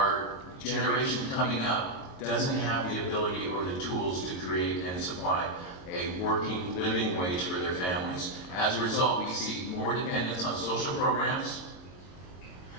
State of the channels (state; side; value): late; right; 22 ms